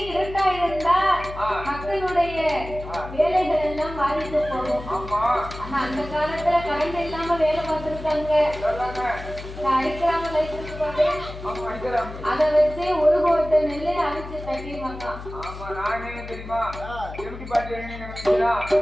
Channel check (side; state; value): left; noise; hum, 12 dB below the sound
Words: இருட்டா இருந்தா மக்களுடைய வேலைகள் எல்லாம் பாதித்து போகும். ஆனா அந்த காலத்துல கரண்ட் இல்லாம வேலை பார்த்திருக்காங்க. அடிக்கிறாங்க லைட் போட்டு அதை வச்சு ஒரு கோட்டை நெல்லை அடிச்சு தட்டிடுவாங்க.